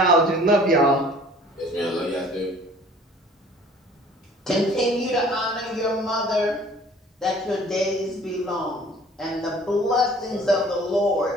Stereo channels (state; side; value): normal; both; correlation 0.51